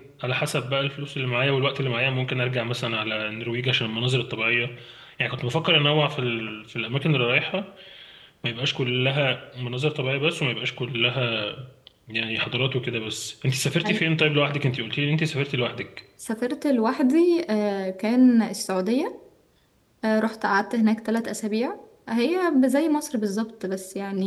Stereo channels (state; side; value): identical; both; correlation 1.00